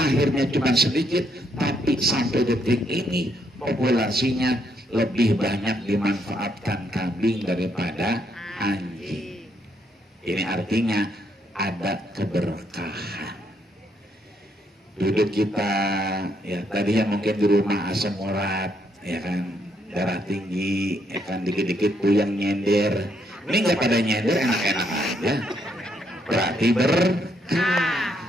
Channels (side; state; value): both; normal; correlation 0.74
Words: cuma sedikit, tapi sampai detik ini populasinya lebih banyak dimanfaatkan kambing daripada anjing. Ini artinya ada keberkahan. Duduk kita, ya tadinya mungkin di rumah asam urat, ya kan, darah tinggi, ya kan, dikit-dikit puyeng nyender. Ini nggak pada nyender, enak-enak aja. Berarti berkah,